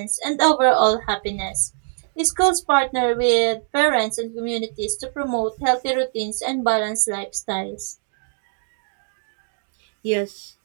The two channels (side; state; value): left; silent; digital silence